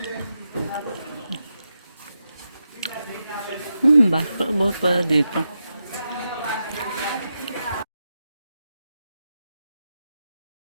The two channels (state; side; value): inverted; both; correlation -0.87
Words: Basketball pala dito.